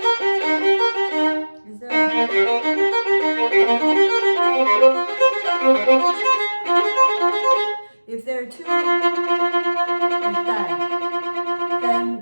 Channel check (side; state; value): both; inverted; correlation -1.00